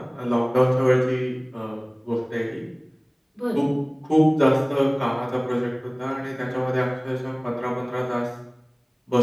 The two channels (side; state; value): both; identical; correlation 1.00